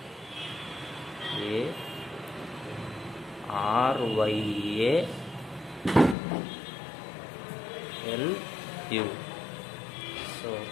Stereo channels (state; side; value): drops out; right; at 6.2 s